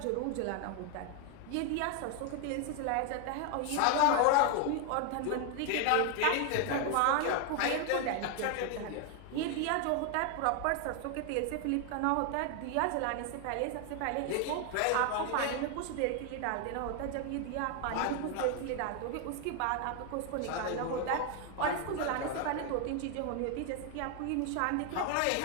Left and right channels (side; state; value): both; different; correlation 0.01